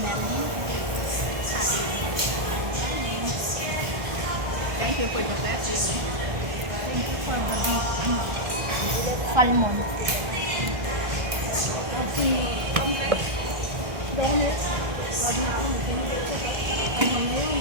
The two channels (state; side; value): late; left; 1.5 ms